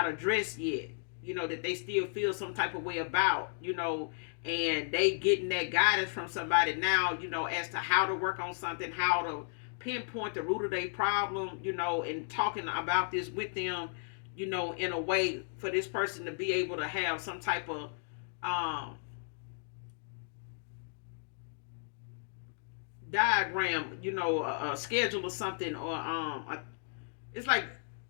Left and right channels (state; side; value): silent; right; digital silence